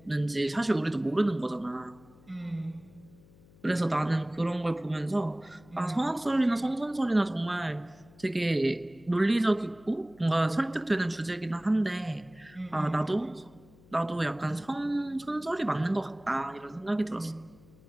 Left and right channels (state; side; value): noise; left; hum, 25 dB below the sound